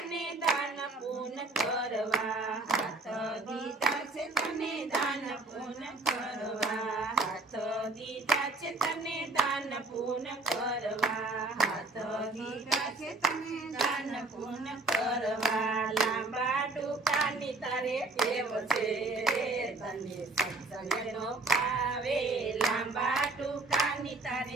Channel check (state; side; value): quieter; left; 3.2 dB